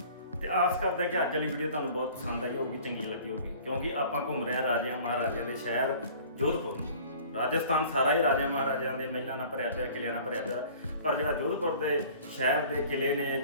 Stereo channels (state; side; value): inverted; both; correlation -0.47